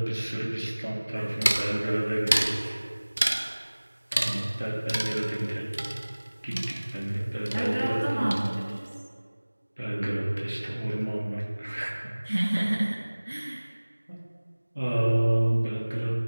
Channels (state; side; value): inverted; both; correlation -1.00